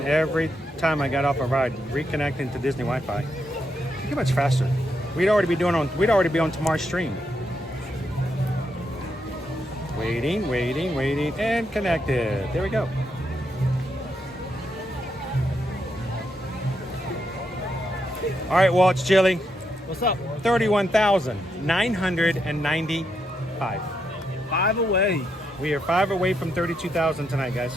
every time I got off a ride reconnecting to Disney Wi-Fi, it'd be much faster. We'd already be on tomorrow's stream. Waiting, and connected. There we go. All right, Walt, it's chilly. What's up? 31,995. 5 away. We are 5 away from 32,000 tonight, guys.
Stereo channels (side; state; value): both; normal; correlation 0.80